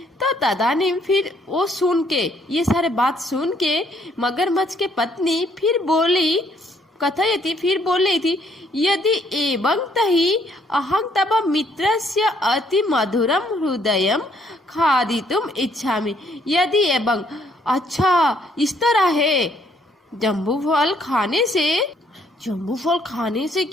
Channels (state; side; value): normal; both; correlation 0.67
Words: तो तदानीम, फिर वो सुन के, ये सारे बात सुन के मगरमच्छ के पत्नी फिर बोली, कथयति, फिर बोल रही थी, यदि एवं तहि अहं तव मित्रस्य अति मधुरम हृदयम खादितुम इच्छामि। यदि एवं, अच्छा, इस तरह है, जम्बूफल खाने से